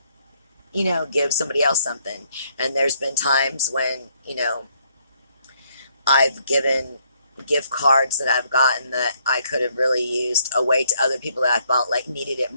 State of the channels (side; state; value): both; inverted; correlation -0.70